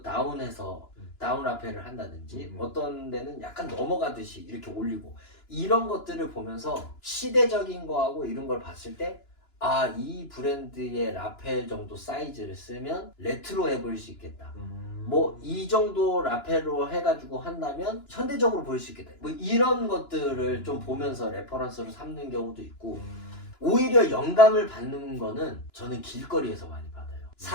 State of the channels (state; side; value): late; right; 2.9 ms